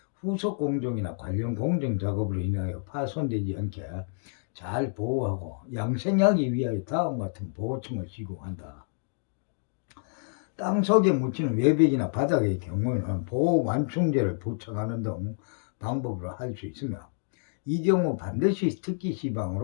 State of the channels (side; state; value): right; silent; digital silence